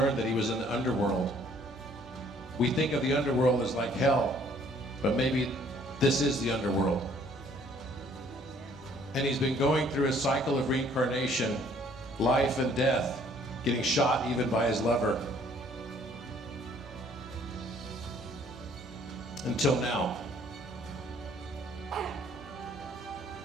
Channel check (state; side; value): normal; both; correlation 0.60